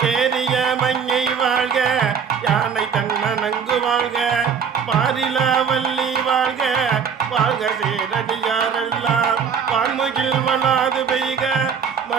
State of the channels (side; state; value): left; quieter; 6.8 dB